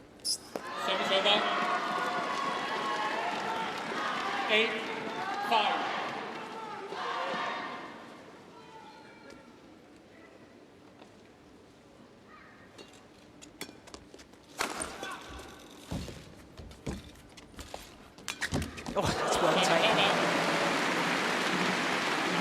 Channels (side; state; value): both; identical; correlation 1.00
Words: Service over. 8, 5. Oh, that's well taken.